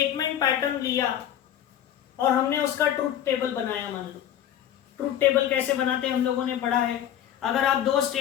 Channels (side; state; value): right; quieter; 10.7 dB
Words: पैटर्न लिया और हमने उसका ट्रूथ टेबल बनाया। मान लो ट्रूथ टेबल कैसे बनाते हैं हम लोगों ने पढ़ा है। अगर आप 2